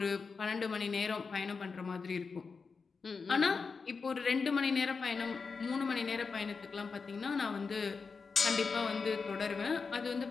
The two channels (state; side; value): quieter; right; 4.9 dB